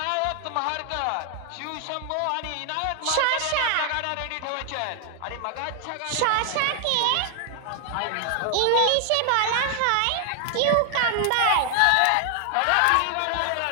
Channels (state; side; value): different; both; correlation 0.00